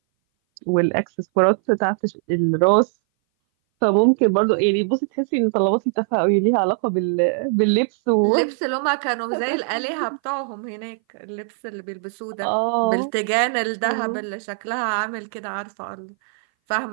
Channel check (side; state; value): left; silent; 60 dB below the other